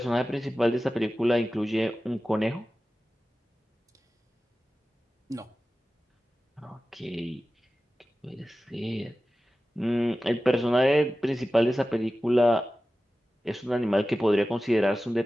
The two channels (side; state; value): both; normal; correlation 0.95